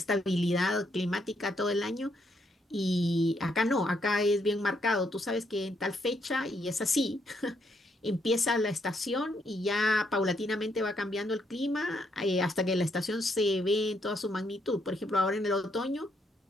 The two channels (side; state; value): both; normal; correlation 0.74